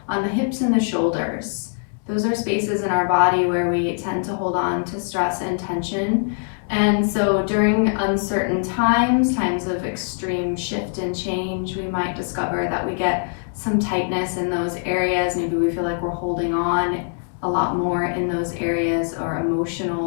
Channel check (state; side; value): silent; right; 64 dB below the other